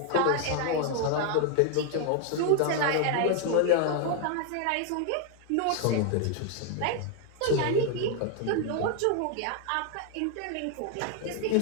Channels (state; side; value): different; both; correlation 0.00